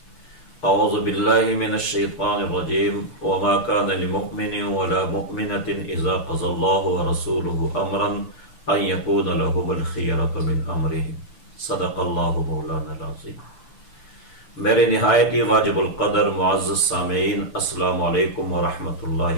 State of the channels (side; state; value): right; late; 6.8 ms